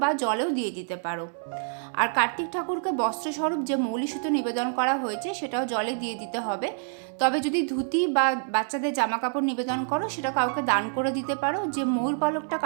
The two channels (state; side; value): silent; left; digital silence